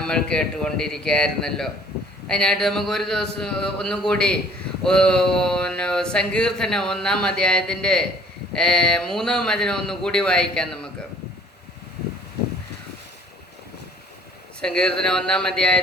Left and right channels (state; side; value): normal; both; correlation 0.54